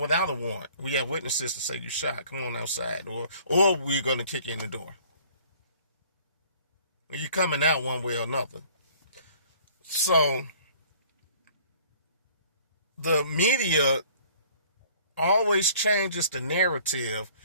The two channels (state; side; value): inverted; both; correlation -0.54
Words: a warrant? We have witnesses to say you shot. Come on outside. Or we're going to kick you in the door. You're coming out one way or another. So, the media always changes the narrative